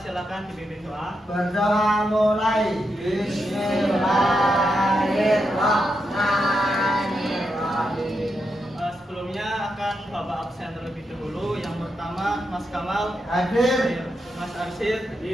dipimpin doa. Berdoa mulai. Bismillahirrahmanirrahim. Sebelumnya akan Bapak absen terlebih dahulu. Yang pertama Mas Kamal Hadir. Mas Arsyid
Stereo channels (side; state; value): both; normal; correlation 0.84